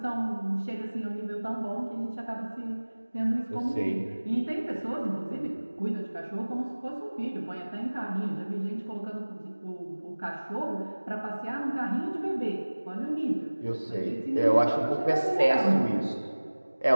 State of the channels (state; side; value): inverted; both; correlation -1.00